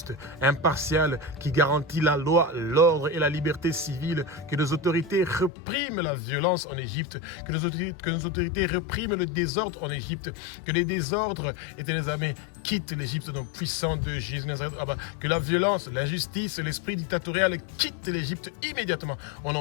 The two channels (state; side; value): drops out; right; at 5.5 s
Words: impartiale, qui garantit la loi, l'ordre et la liberté civile, que nos autorités repriment la violence en Égypte, que nos autorités repriment le désordre en Égypte, que les désordres, éternels amis, quittent l'Égypte au nom puissant de Jésus Nazareth, Abba, que la violence, l'injustice, l'esprit dictatorial quittent l'Égypte immédiatement au